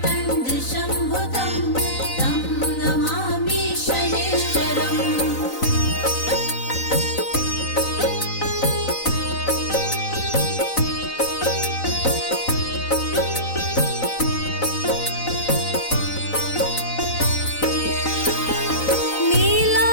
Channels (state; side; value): late; right; 4.0 ms